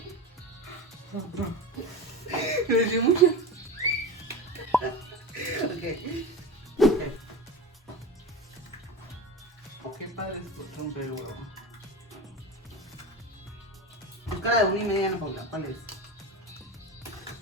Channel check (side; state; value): both; normal; correlation 0.26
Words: Me eché mucho. Ok. ¿O qué padre es romper el huevo? Busca la de 1,5, Ana Paula, ¿cuál es?